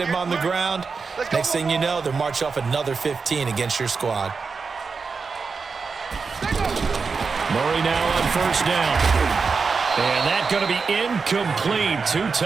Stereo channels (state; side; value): quieter; left; 4.9 dB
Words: on the ground. Next thing you know, they'll march off another 15 against your squad. Murray now on first down. And that's going to be incomplete. Too